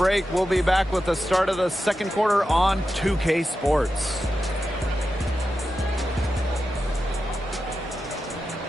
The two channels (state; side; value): normal; both; correlation 0.91